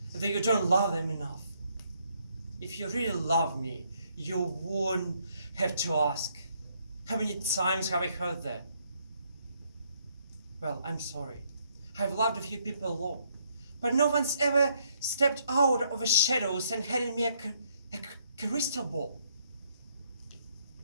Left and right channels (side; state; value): both; inverted; correlation -0.70